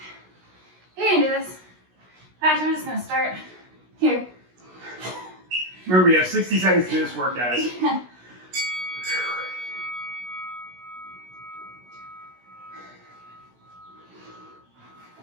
You can do this. Actually, I'm just gonna start here. Remember, you have 60 seconds to do this work, guys.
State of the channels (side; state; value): left; late; 16 ms